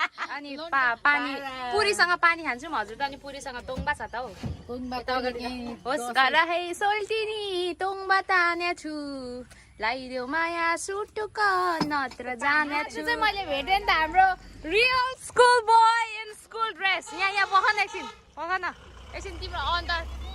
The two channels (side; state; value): both; identical; correlation 1.00